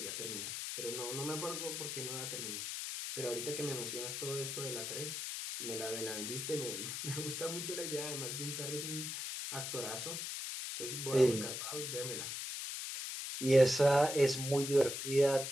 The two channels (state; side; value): noise; left; hiss, 4 dB below the sound